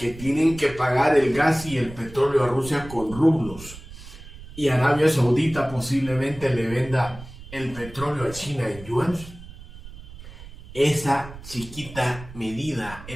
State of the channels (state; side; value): noise; right; rumble, 15 dB below the sound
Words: tienen que pagar el gas y el petróleo a Rusia con rublos, y Arabia Saudita posiblemente le venda el petróleo a China en yuan, esa chiquita medida,